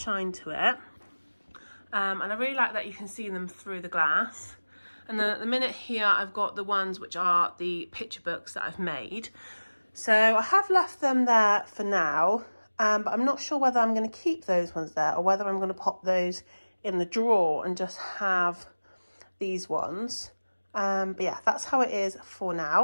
to it. And I really like that you can see them through the glass. And then at the minute here, I've got the ones which are the picture books that I've made. So I have left them there for now, but I'm not sure whether I'm going to keep those ones there or whether I'm going to pop those in the drawer and just have these ones. But yeah, that's how it is for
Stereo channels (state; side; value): inverted; both; correlation -1.00